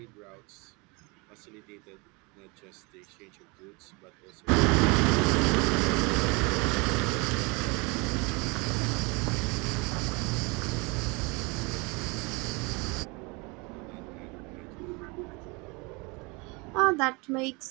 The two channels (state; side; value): quieter; left; 28.3 dB